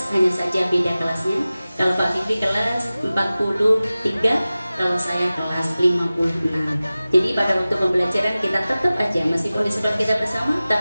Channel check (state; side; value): inverted; both; correlation -0.97